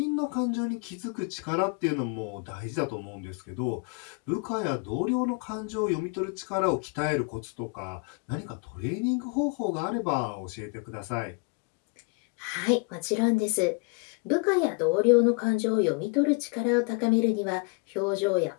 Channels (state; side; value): quieter; right; 32.9 dB